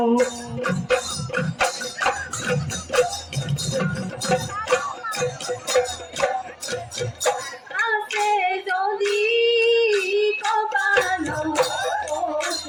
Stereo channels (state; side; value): identical; both; correlation 1.00